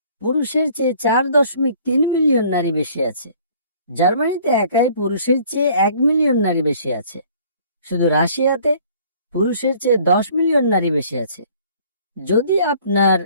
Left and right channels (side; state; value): both; inverted; correlation -0.55